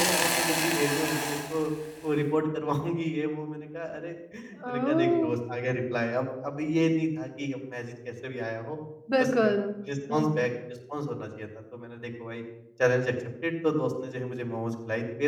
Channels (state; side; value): identical; both; correlation 1.00